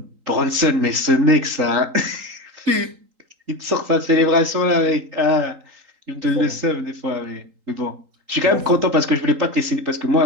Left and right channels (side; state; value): left; late; 3.8 ms